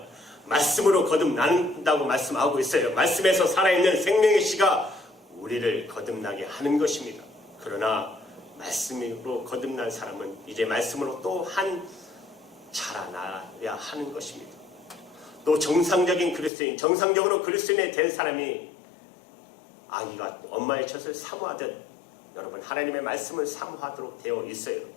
말씀으로 거듭난다고 말씀하고 있어요. 말씀에서 살아있는 생명의 씨가 우리를 거듭나게 하는 것입니다. 그러나 말씀으로 거듭난 사람은 이제 말씀으로 또한 자라나야 하는 것입니다. 또 정상적인 그리스도인, 정상적으로 그리스도인이 된 사람이 아기가 엄마의 젖을 사모하듯 여러분 하나님의 말씀을 사모하도록 되어 있어요.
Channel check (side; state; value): right; drops out; at 16.5 s